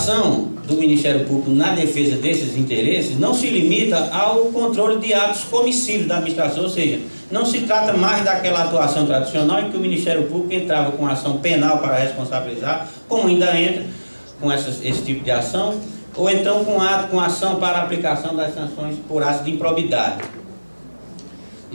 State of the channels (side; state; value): both; inverted; correlation -1.00